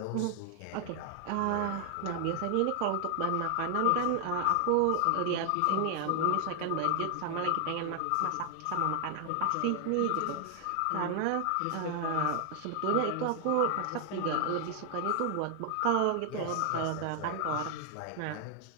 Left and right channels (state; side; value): different; both; correlation 0.00